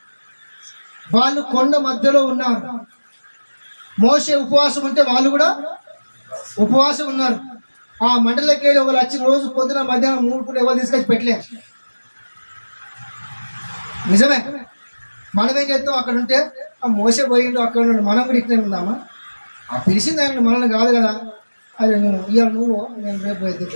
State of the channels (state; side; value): inverted; both; correlation -1.00